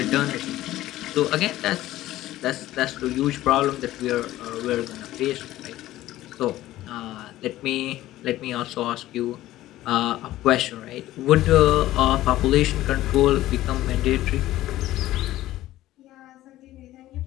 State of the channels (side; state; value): right; quieter; 15.1 dB